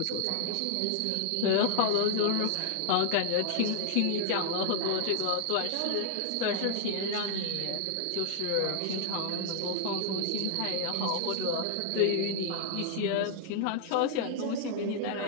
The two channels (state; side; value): different; both; correlation 0.00